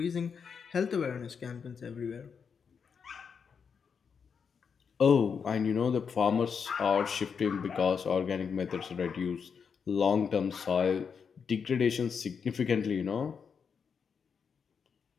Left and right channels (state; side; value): quieter; right; 6.3 dB